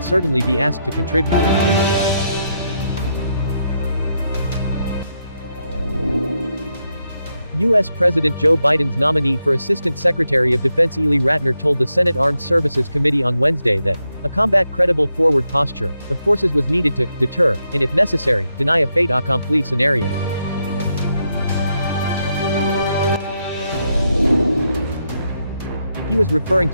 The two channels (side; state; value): both; inverted; correlation -0.82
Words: certainly be asked to contribute. U.S. President Joe Biden's nominee for Assistant Secretary of Defense Ely Ratner told the Senate Armed Services Committee on Wednesday that a combat credible forward posture of forces was needed to deter, and if necessary, deny a fait accompli scenario. He was referring